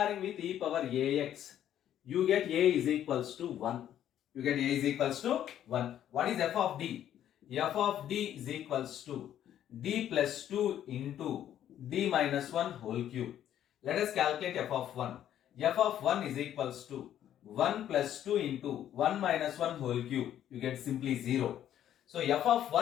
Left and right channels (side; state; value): right; quieter; 10.9 dB